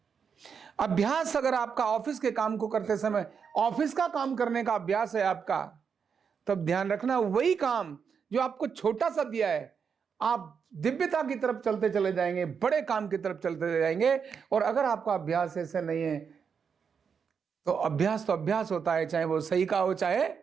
अभ्यास अगर आपका ऑफिस के काम को करते समय ऑफिस का काम करने का अभ्यास है आपका, तब ध्यान रखना वही काम जो आपको छोटा सा दिया है, आप दिव्यता की तरफ चलते चले जाएंगे, बड़े काम की तरफ चलते चले जाएंगे। और अगर आपका अभ्यास ऐसे नहीं है तो अभ्यास होता है, चाहे वो सही का हो चाहे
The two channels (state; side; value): quieter; left; 6.5 dB